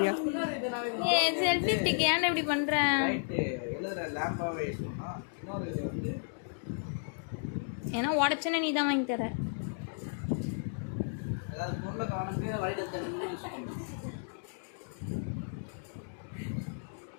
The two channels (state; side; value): silent; right; digital silence